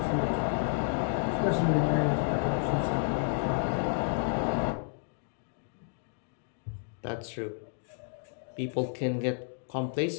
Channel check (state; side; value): silent; right; digital silence